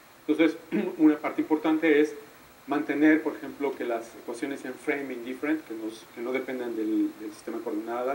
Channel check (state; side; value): identical; both; correlation 1.00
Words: Entonces, una parte importante es mantener, por ejemplo, que las ecuaciones sean frame indifferent, que no dependan del sistema de